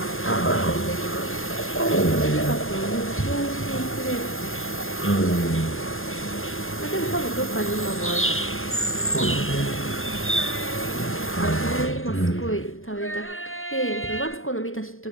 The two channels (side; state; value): right; late; 0.60 ms